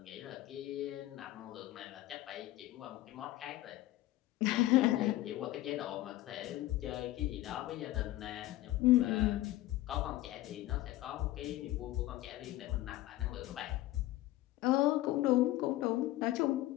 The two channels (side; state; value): right; quieter; 16.2 dB